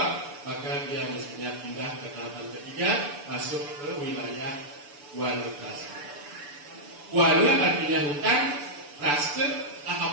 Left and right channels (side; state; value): left; late; 6.9 ms